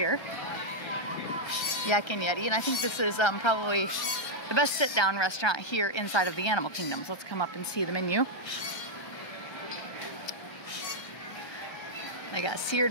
Yacking Yeti. And I think this is probably the best sit-down restaurant here inside of the Animal Kingdom. So let's come up and see the menu. They got seared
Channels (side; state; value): right; late; 1.3 ms